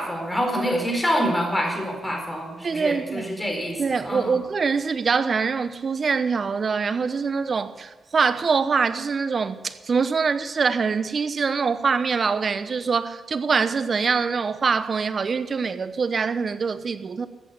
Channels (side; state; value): left; quieter; 4.0 dB